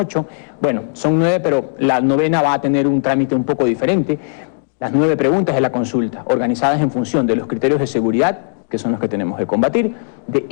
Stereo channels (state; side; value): silent; right; digital silence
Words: bueno, son 9, pero la 9ª va a tener un trámite un poco diferente. Las 9 preguntas de la consulta, organizadas en función de los criterios de seguridad, que son los que tenemos que combatir, de